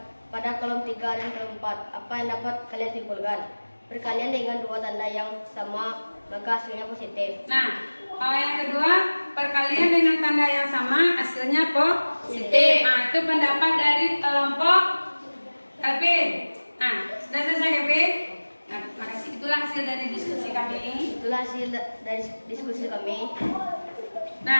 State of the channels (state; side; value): inverted; both; correlation -1.00